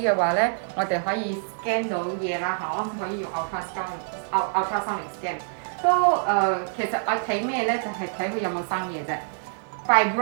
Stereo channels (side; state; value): left; silent; 61 dB below the other